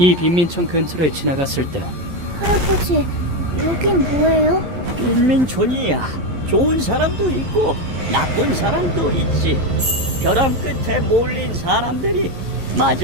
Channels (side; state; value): left; late; 11 ms